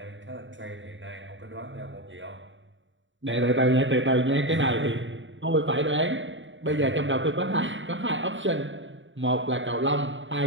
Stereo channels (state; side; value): late; left; 0.55 ms